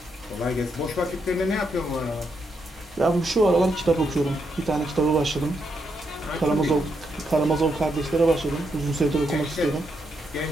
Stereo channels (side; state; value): both; normal; correlation 0.80